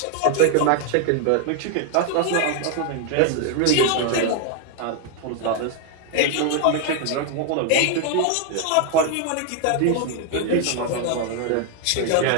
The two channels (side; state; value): both; different; correlation 0.01